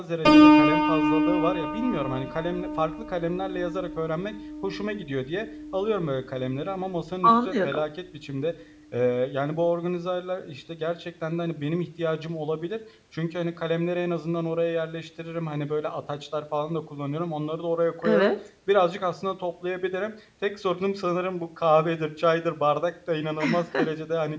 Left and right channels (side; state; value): both; identical; correlation 1.00